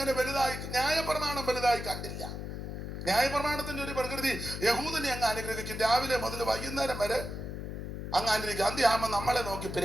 വലുതായി, ന്യായപ്രമാണം വലുതായി കണ്ടില്ല. ന്യായപ്രമാണത്തിന്റെ ഒരു പ്രകൃതി യഹൂദനെ അങ്ങ് അനുഗ്രഹിക്കും. രാവിലെ മുതൽ വൈകുന്നേരം വരെ അങ്ങ് അനുഗ്രഹിക്കും. അന്ത്യാകുമ്പോൾ നമ്മളെ നോക്കി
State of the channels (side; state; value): left; noise; hum, 6 dB below the sound